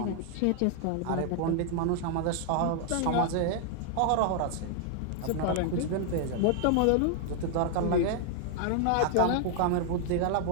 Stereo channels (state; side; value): different; both; correlation 0.00